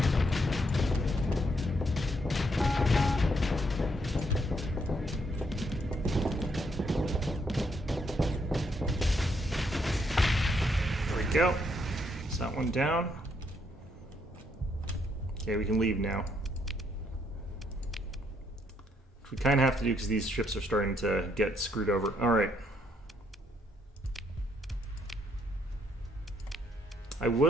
Go. Is that one down? Okay, we can leave now. Which we kind of have to do because these ships are starting to get screwed over. Alright. I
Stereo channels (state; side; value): normal; both; correlation 0.73